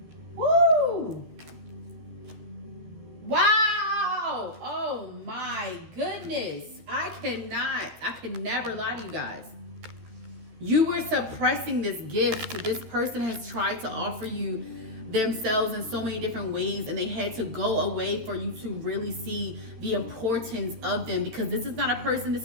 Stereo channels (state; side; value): late; left; 13 ms